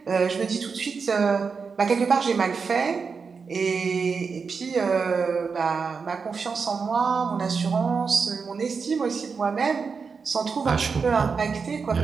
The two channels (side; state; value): left; quieter; 5.3 dB